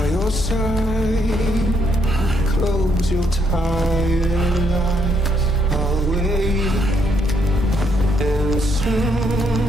your side. Close your tired eyes. I'll wait, and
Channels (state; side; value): normal; both; correlation 0.73